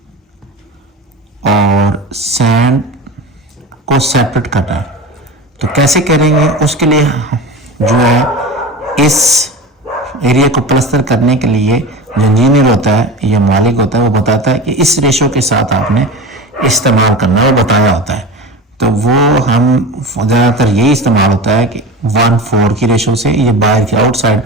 और सैंड को सेपरेट करना है। तो कैसे करेंगे, उसके लिए जो है इस एरिया को प्लास्टर करने के लिए जो इंजीनियर होता है या मालिक होता है, वो बताता है कि इस रेशो के साथ आपने इस्तेमाल करना, वो बताया होता है। तो वो हम ज़्यादातर यही इस्तेमाल होता है कि 1:4 की रेशो से, ये बाहर की आउटसाइड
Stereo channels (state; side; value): normal; both; correlation 0.30